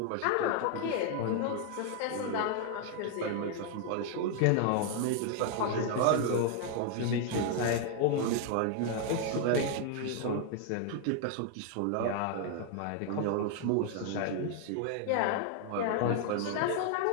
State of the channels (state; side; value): different; both; correlation 0.00